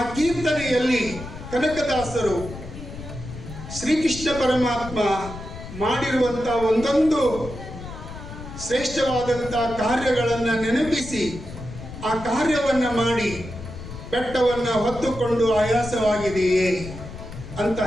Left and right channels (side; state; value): left; noise; rumble, 12 dB below the sound